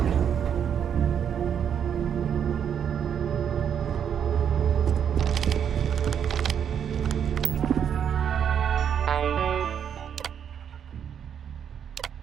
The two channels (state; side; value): quieter; left; 8.3 dB